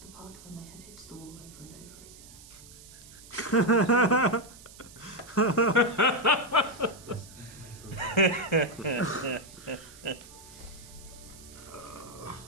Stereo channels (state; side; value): noise; right; hiss, 19 dB below the sound